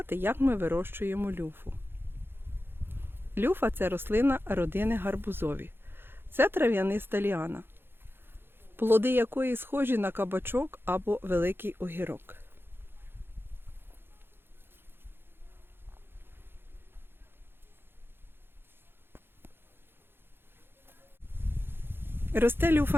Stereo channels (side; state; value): left; late; 0.10 ms